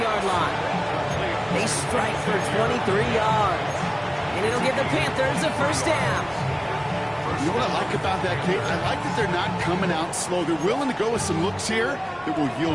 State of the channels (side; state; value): both; identical; correlation 1.00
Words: line. They strike for 23 yards. And it'll give the Panthers a first down. You know what I like about that, Kate? I like that they're not coming out slow. They're willing to go with some looks here that will